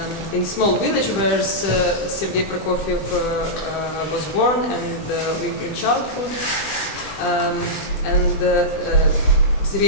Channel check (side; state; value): right; late; 20 ms